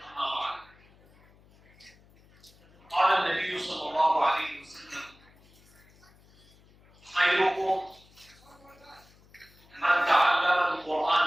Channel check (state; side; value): noise; left; hum, 28 dB below the sound